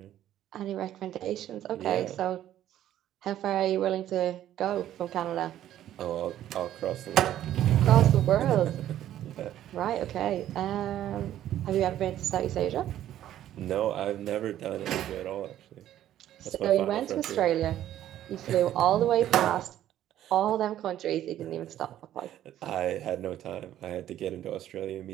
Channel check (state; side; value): quieter; left; 12.1 dB